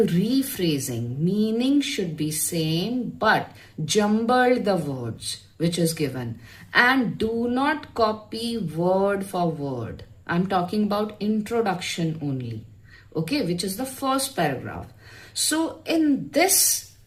Meaning should be same, but jumble the words which is given. And do not copy word for word. I'm talking about introduction only, okay, which is the first paragraph. So in this,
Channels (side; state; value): both; identical; correlation 1.00